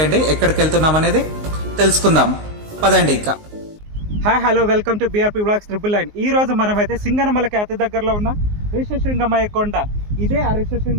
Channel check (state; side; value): late; left; 19 ms